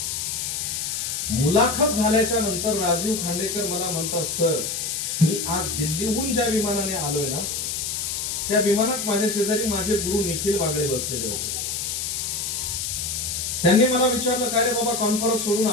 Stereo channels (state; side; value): noise; left; hiss, 2 dB below the sound